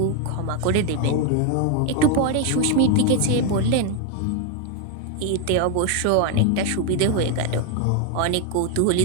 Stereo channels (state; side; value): different; both; correlation 0.01